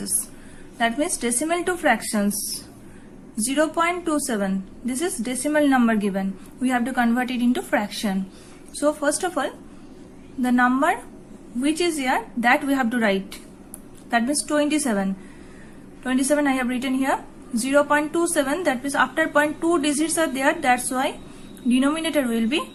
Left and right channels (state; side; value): identical; both; correlation 1.00